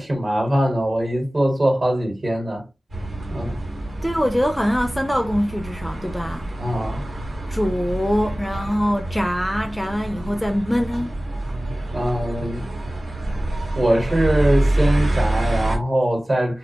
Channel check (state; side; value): normal; both; correlation 0.97